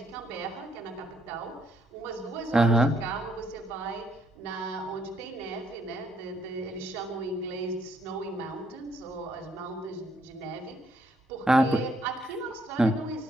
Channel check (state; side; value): normal; both; correlation 0.71